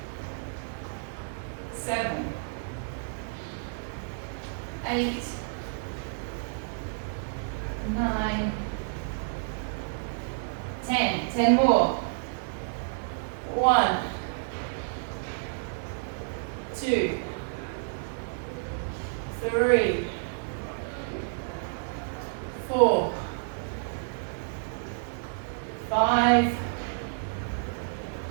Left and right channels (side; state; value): left; silent; digital silence